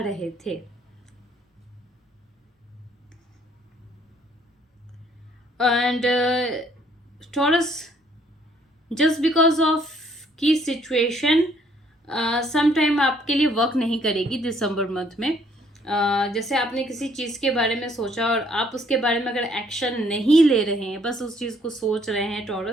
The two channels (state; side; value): normal; both; correlation 0.64